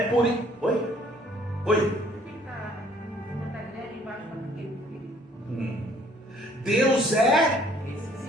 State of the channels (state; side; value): normal; both; correlation 0.60